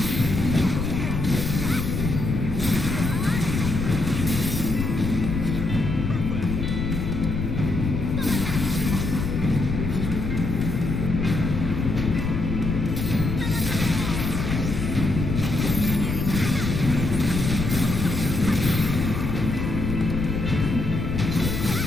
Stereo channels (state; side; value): noise; left; rumble, 2 dB below the sound